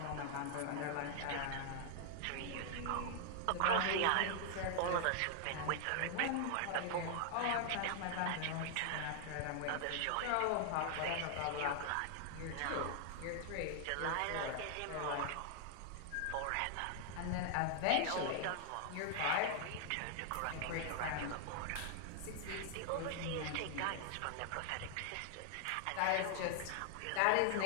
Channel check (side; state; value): both; different; correlation -0.01